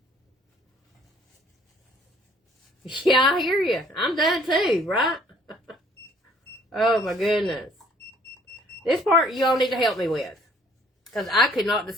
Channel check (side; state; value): both; normal; correlation 0.60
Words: Yeah, I hear you. I'm done too, right? Oh my goodness. This part you all need to help me with. Because I could not